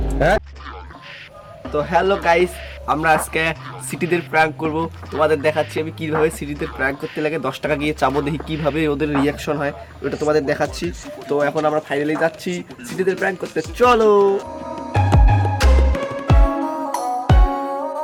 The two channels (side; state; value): both; identical; correlation 1.00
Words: হ্যাঁ তো হ্যালো গাইস, আমরা আজকে সিটিদের প্র্যাঙ্ক করব, তোমাদের দেখাচ্ছি আমি কিভাবে সিটিতে প্র্যাঙ্ক করতে লাগে 10 টাকা গিয়ে চাবো, দেখি কিভাবে ওদের রিয়াকশন হয় ওটা তোমাদের দেখাচ্ছি। তো এখন আমরা ফাইনালি যাচ্ছি সিটিদের প্র্যাঙ্ক করতে, চলো।